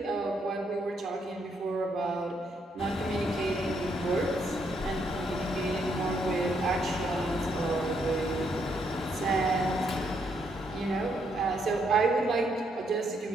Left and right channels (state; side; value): normal; both; correlation 0.74